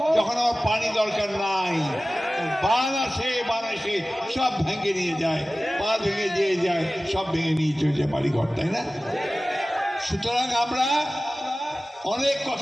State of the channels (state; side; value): normal; both; correlation 0.97